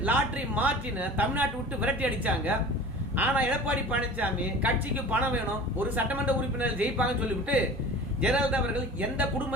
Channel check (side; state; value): both; normal; correlation 0.40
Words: லாட்ரி மார்ட்டின தமிழ்நாட்டை விட்டு விரட்டி அடிச்சாங்க. ஆனா எடப்பாடி பழனிசாமி கட்சிக்கு பணம் வேணும், ஒரு சட்டமன்ற உறுப்பினர் ஜெயிப்பாங்கன்னு சொல்லிவிட்டு ஜெயலலிதா அவர்கள் எந்த